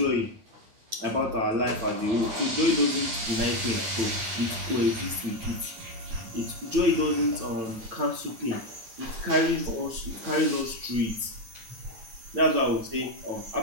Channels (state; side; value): late; left; 9.0 ms